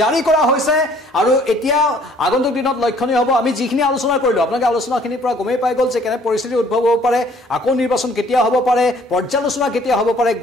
কৰা হৈছে আৰু এতিয়া আগন্তুক দিনত লক্ষণীয় হ'ব আমি যিখিনি আলোচনা কৰিলো আপোনালোকে আলোচনাখিনিৰ পৰা গমেই পাই গ'ল যে কেনে পৰিস্থিতি উদ্ভৱ হ'ব পাৰে আকৌ নিৰ্বাচন কেতিয়া হ'ব পাৰে পৰ্যালোচনা কেতিয়া হ'ব পাৰে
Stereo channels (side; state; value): both; normal; correlation 0.58